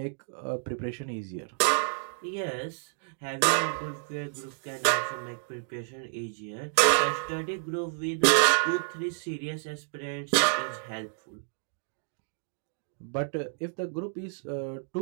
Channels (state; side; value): silent; left; digital silence